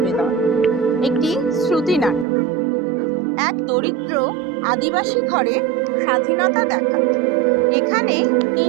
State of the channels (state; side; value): drops out; left; at 2.2 s